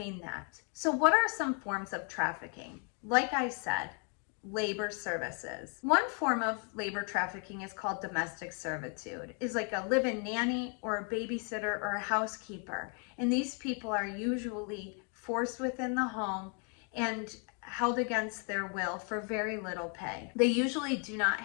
that. So what are some forms of trafficking? Like I said, labor services. One form of labor trafficking is called domestic servitude. It's like a live-in nanny or a babysitter or a housekeeper. And these people are usually forced within the home and held against their will for very little pay. They usually do not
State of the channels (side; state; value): right; quieter; 39.0 dB